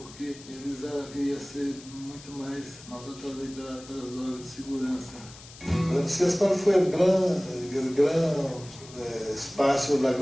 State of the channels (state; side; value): noise; left; hiss, 18 dB below the sound